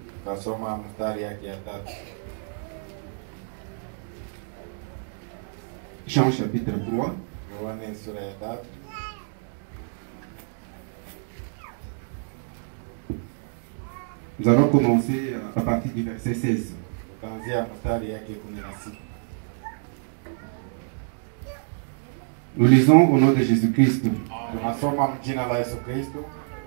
Tunasoma mstari yake ya 3. Jean chapitre 3. Yohane sura ya 3. Nous allons commencer à partir du verset 16. Tutaanzia mstari yake 16. Nous lisons au nom de Jésus-Christ. Tunasoma mjina la Yesu Kristo.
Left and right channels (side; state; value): left; silent; digital silence